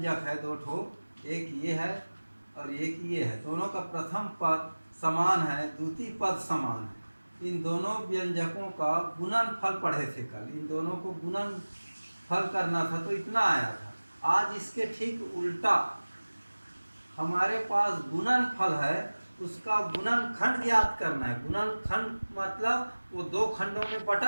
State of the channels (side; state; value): both; inverted; correlation -1.00